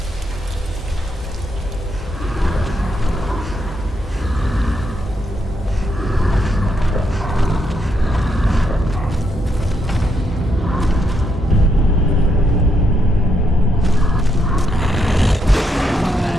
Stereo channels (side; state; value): both; normal; correlation 0.78